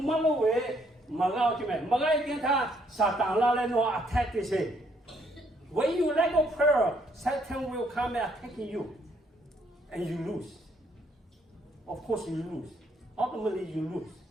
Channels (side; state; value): both; normal; correlation 0.69